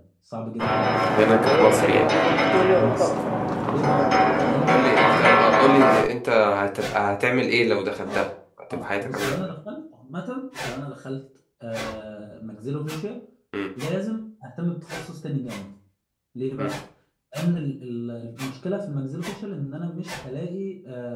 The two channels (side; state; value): both; identical; correlation 1.00